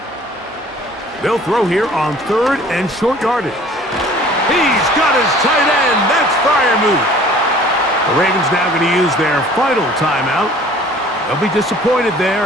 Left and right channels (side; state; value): both; normal; correlation 0.50